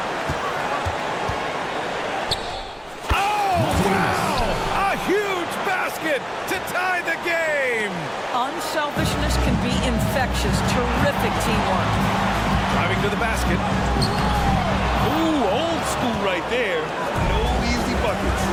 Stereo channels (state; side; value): identical; both; correlation 1.00